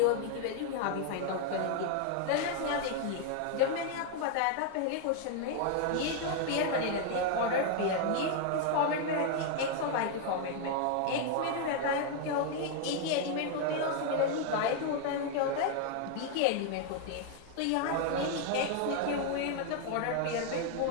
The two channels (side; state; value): both; different; correlation 0.00